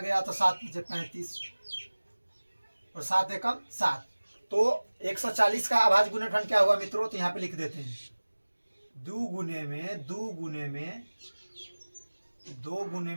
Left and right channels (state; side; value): inverted; both; correlation -1.00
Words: तो 7 बचे 35 और 7 एकम 7। तो 140 का अभाज्य गुणनखंड क्या हुआ मित्रों, तो यहाँ पे लिख देते हैं 2 गुने